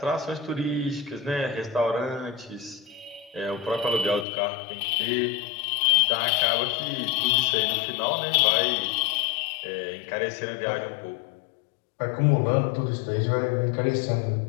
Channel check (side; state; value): right; drops out; at 4.2 s